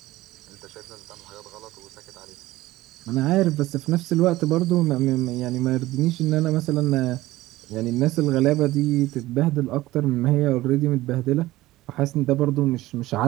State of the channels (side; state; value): left; quieter; 17.3 dB